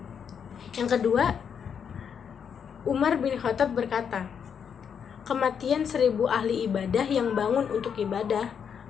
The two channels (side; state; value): right; quieter; 7.4 dB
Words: Yang kedua, Umar bin Khattab berkata, kematian 1000 ahli ibadah yang bangun untuk ibadah